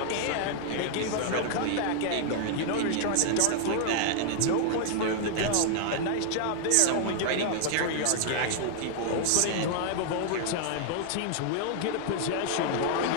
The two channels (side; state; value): both; different; correlation 0.00